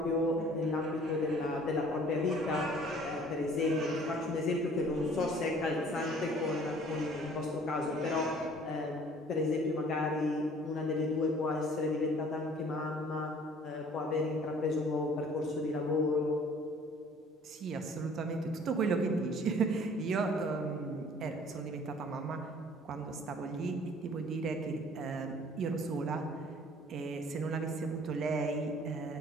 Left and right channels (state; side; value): normal; both; correlation 0.53